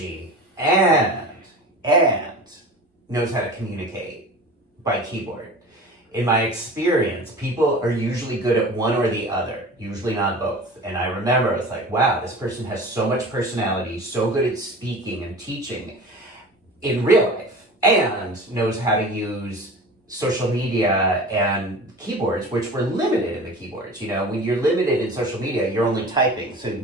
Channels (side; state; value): both; normal; correlation 0.37